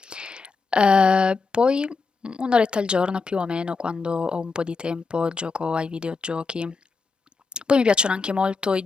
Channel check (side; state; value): right; quieter; 4.4 dB